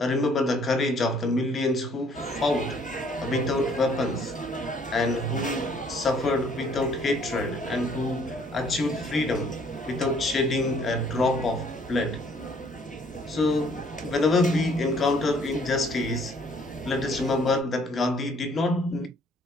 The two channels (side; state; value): both; normal; correlation 0.61